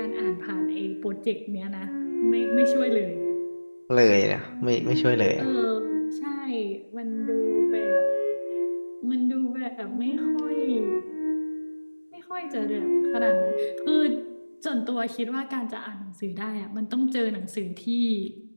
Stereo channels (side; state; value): both; inverted; correlation -1.00